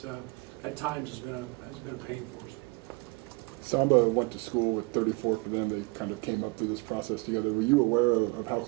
at times has been a pain for us. Samba went to school with 34 for them. They kind of came up through this process together. Were you aware of how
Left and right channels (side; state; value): left; quieter; 27.8 dB